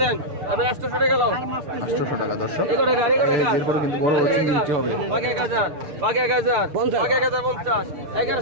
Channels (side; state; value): left; late; 6.7 ms